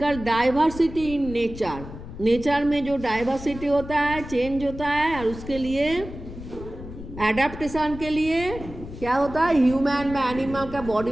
diversity in nature. Nature में जो डाइवर्सिटी होता है, चेंज होता है, और उसके लिए एडेप्टेशन के लिए क्या होता है, ह्यूमन में, एनिमल का बॉडी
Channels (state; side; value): noise; left; rumble, 12 dB below the sound